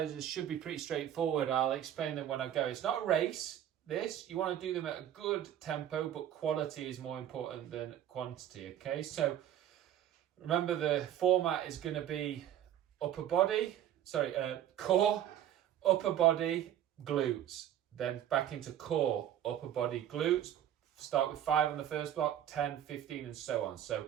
should be pretty straightforward. I'll explain them when I go. It's not a race. You want to do them at a good tempo, but quality is more important than quantity. Okay, so remember, the format is going to be core, upper body, glutes, then back into core, upper body, glutes. Start with 5 on the first block, 10, 15, and so on. So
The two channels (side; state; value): left; quieter; 11.0 dB